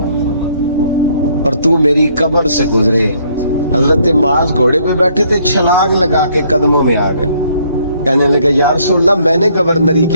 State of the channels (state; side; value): inverted; both; correlation -0.66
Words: اور تو میری قبر سے گزرے۔ حضرت معاذ گھوڑے پہ بیٹھے تھے، چھلانگ لگا کے قدموں میں آ گئے، کہنے لگا یا رسول اللہ میں نے گورنری